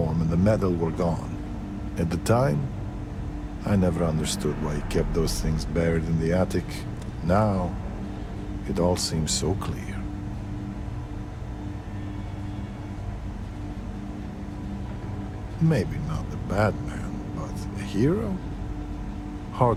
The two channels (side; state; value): both; identical; correlation 1.00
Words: and the medal were gone. At the time, I never understood why he kept those things buried in the attic. Now, it all seems so clear. Maybe not the bad man, but a hero?